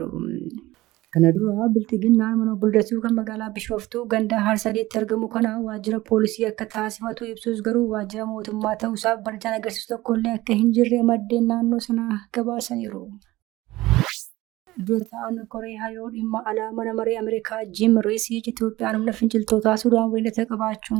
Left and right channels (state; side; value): quieter; left; 18.1 dB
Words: Kana dura bilxiginnaan mana obbo Liddatuu kan magaalaa Bishooftuu ganda Harsadiitti argamu kana waajjira poolisii akka taasifatu ibsus garuu waajjira mootummaa ta'uusaaf barjaan agarsiisu tokkollee akka hin jirre maddeen naannoo sanaa gabaasaniiru. Dura ta'an koree hariiroo dhimma alaa mana maree Ameerikaa Jim Riisiich Itoophiyaan humna finciltootaa Sudaan waliin